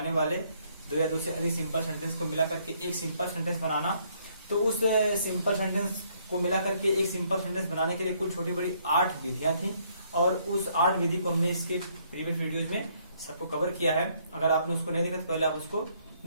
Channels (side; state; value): both; inverted; correlation -0.68